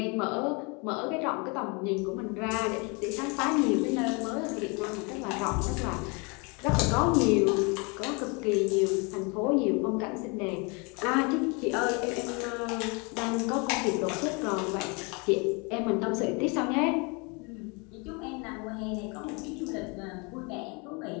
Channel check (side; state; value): right; quieter; 30.9 dB